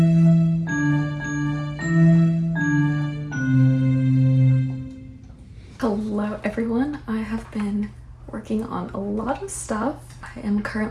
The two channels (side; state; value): both; identical; correlation 1.00